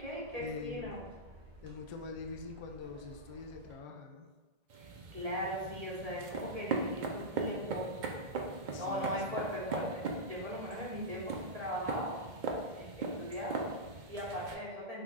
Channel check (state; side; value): late; left; 2.2 ms